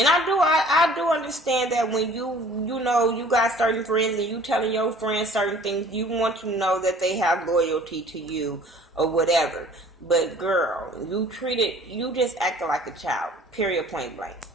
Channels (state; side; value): normal; both; correlation 0.51